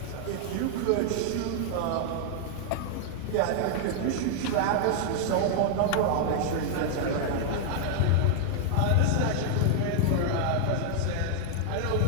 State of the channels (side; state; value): both; different; correlation -0.01